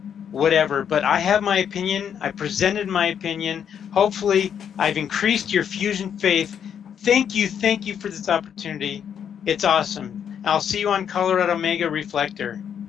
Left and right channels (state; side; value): quieter; right; 8.3 dB